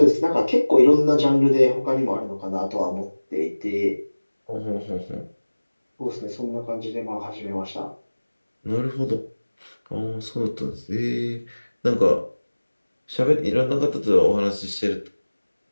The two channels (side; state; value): both; inverted; correlation -1.00